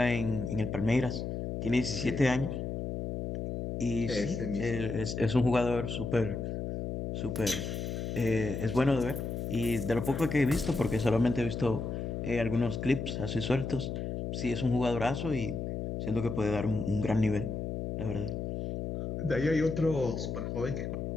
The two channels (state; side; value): noise; left; hum, 4 dB below the sound